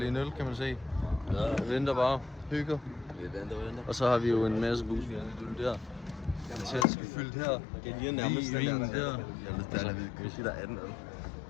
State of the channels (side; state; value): right; drops out; at 6.9 s